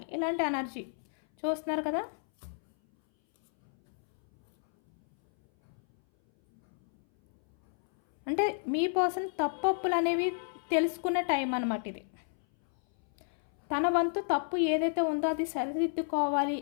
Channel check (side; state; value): right; silent; 57 dB below the other